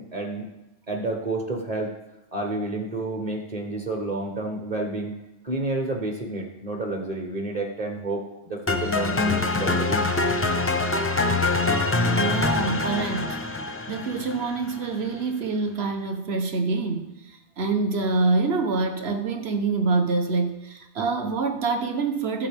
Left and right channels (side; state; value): both; normal; correlation -0.02